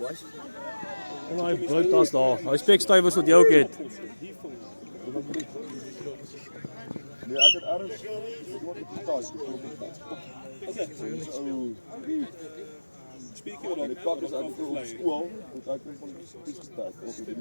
Daai broodtas daar. Daai spekstuiwers wat jy ook het. Nee, ek het ergens wat op die tas. Spiertjie wat die kak is uit op skool, want ek kom van die spies gestek of het in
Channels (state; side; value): inverted; both; correlation -1.00